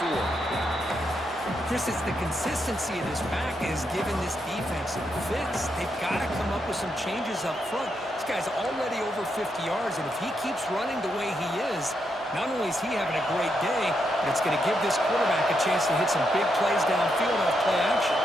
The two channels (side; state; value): both; normal; correlation 0.81